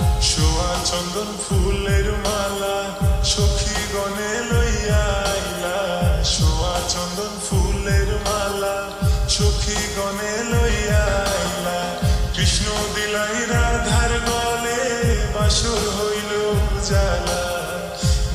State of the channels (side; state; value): both; identical; correlation 1.00